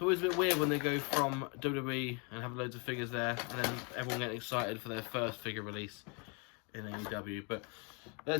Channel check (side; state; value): right; quieter; 33.9 dB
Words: always a bit weird when they go from WWE and have loads of figures there, and then everyone getting excited for their first figure release in AEW. But